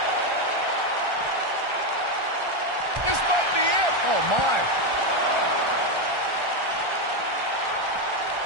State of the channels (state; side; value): late; left; 1.3 ms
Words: This might be it. Oh, my.